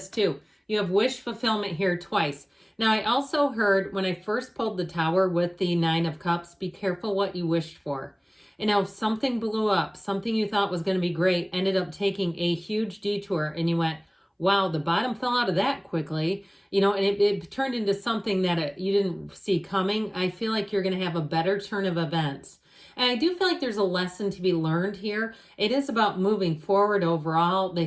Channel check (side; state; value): both; identical; correlation 1.00